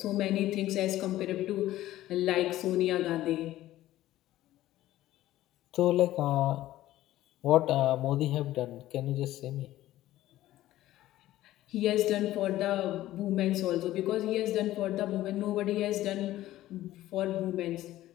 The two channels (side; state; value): right; quieter; 14.8 dB